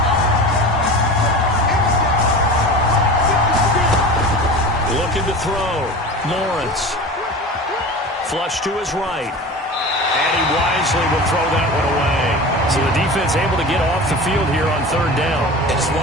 Looking to throw. Lawrence. Flush to his right. And he wisely will throw that one away. So the defense able to get off the field here on 3rd down. It's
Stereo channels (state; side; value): normal; both; correlation 0.34